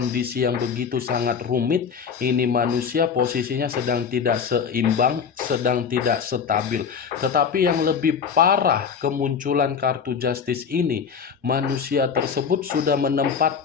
yang begitu sangat rumit, ini manusia posisinya sedang tidak seimbang, sedang tidak stabil. Tetapi yang lebih parah kemunculan kartu Justice ini, manusia tersebut sudah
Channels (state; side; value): quieter; right; 6.5 dB